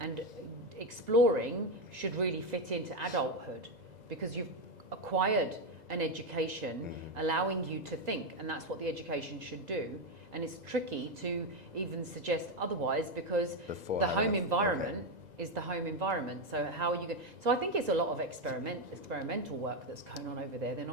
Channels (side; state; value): left; late; 2.0 ms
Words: exploring should really fit into adulthood because you've acquired an education allowing you to think, and that's what the education should do. And it's tricky to even suggest otherwise because the home environment is the home environment. So how are you going? So I think it's a lot of experimental work that's going on over there. They're